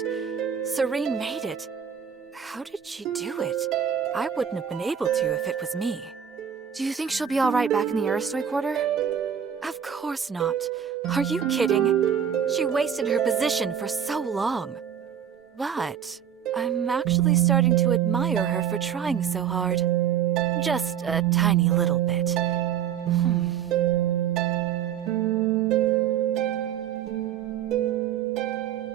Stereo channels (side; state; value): left; quieter; 8.6 dB